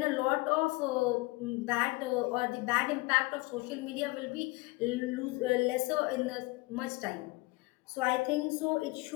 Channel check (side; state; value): right; quieter; 23.4 dB